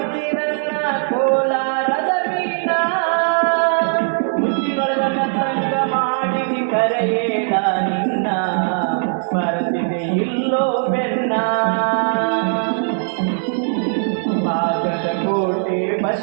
ಕೋಲಾರದ ಮೀನ ಮುತ್ತಿನೊಳಗ ಮತ್ತಂಗ ಮಾಡಿದಿ ಕರೆಯೇಡ ನಿನ್ನ ಬರುತ್ತಿದೆ ಇಲ್ಲೋ ಬೆನ್ನ ಬಾಗಲಕೋಟೆ ಬಸ್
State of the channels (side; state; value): left; silent; 57 dB below the other